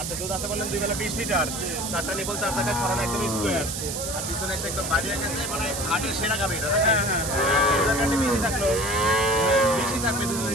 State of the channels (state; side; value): noise; right; hiss, 4 dB below the sound